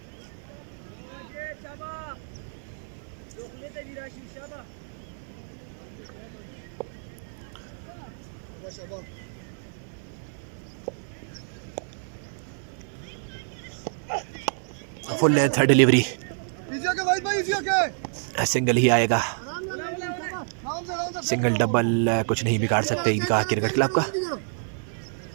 Full length delivery, single ही आएगा। सिंगल डबल कुछ नहीं बिगाड़ सकते ईदगाह क्रिकेट क्लब का।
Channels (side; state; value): left; silent; digital silence